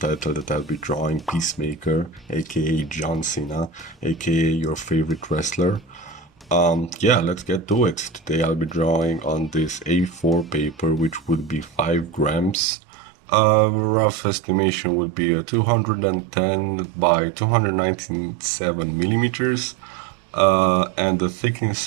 that I'll be drawing Peacemaker, aka John Cena, aka your favorite wrestler. Yeah, let's get to it. Today I'll be drawing on this A4 paper, which would be 5 grams. Rough estimation would be a 210 by 297 millimeters, and a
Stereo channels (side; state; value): left; drops out; at 12.6 s